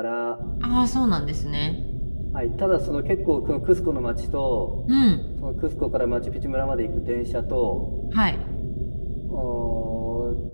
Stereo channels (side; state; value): both; inverted; correlation -1.00